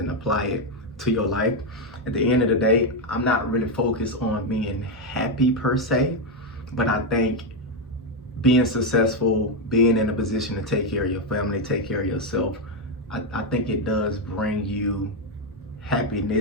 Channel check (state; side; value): normal; both; correlation 0.05